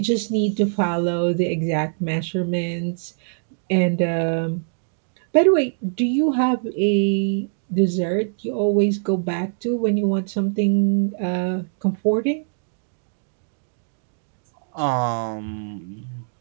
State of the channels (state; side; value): silent; left; digital silence